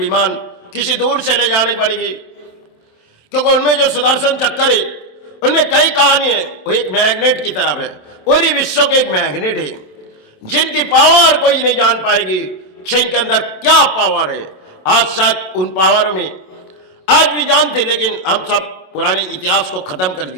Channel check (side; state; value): right; late; 27 ms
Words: किसी दूर से ले जानी पड़ेगी। क्योंकि उनमें जो सुदर्शन चक्कर है, उनमें कई कहानी है। वो एक मैग्नेट की तरफ है, पूरी विश्व के एक मैग्नेट है, जिनकी पावर कोई नहीं जान पाएगी। इनके अंदर क्या पावर है, आज शायद उन पावर में आज भी जानते, लेकिन हम सब पुराने इतिहास को खत्म कर